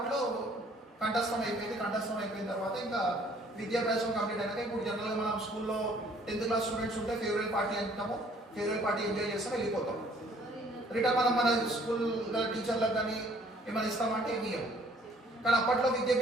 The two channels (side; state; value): both; normal; correlation 0.59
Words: కంఠస్థం అయిపోయిన తర్వాత ఇంకా విద్యాభ్యాసం కంప్లీట్ అయినాక ఇప్పుడు జనరల్గా మనం స్కూల్లో 10th క్లాస్ స్టూడెంట్స్ ఉంటే ఫేర్వెల్ పార్టీ అంటాము, ఫేర్వెల్ పార్టీ ఎంజాయ్ చేస్తాం, వెళ్ళిపోతాం. రిటర్న్ మన స్కూల్ టీచర్లకు కానీ ఏమైనా ఇస్తామంటే ఏమి ఇవ్వం. కానీ అప్పట్లో